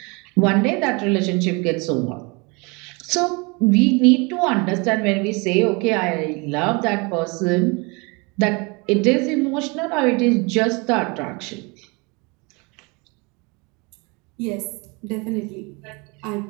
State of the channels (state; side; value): quieter; left; 28.9 dB